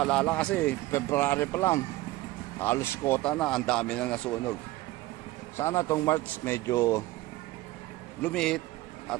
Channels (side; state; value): left; quieter; 18.1 dB